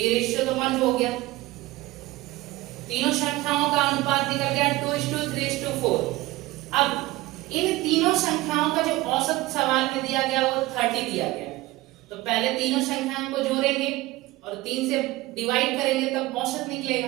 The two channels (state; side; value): quieter; left; 18.9 dB